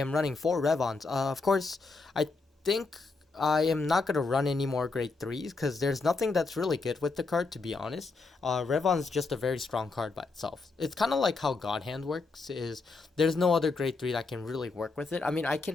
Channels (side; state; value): right; quieter; 4.0 dB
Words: running 4 Revons. Of course, I think I am not going to run any more grade 3s because there's nothing that's really good with the card, to be honest. Revon's just a very strong card by itself. It's kind of like how God Hand works, is there's no other grade 3 that can really work with it. I mean, I